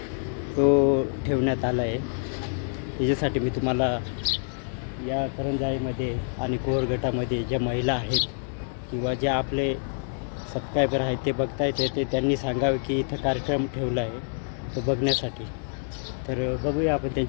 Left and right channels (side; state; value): right; silent; digital silence